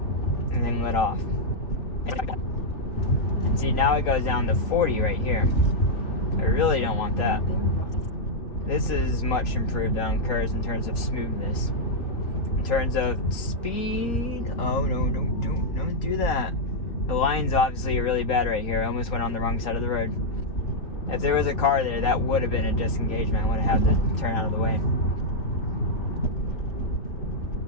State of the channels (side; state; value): right; late; 3.4 ms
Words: and then let off. And see, now it goes down to 40 right here. I really don't want that. This is much improved on curves in terms of smoothness. In terms of speed, oh no, don't do that. The line's obviously really bad right here. I almost went on the wrong side of the road. If there was a car there, that would have been a disengagement. I would have had to turn out of the way.